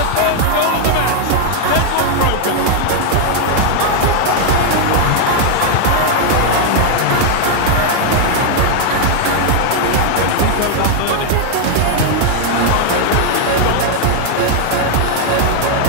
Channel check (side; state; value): both; different; correlation 0.00